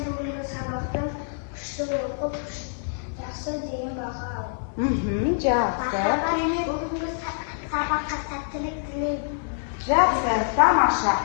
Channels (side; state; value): right; silent; digital silence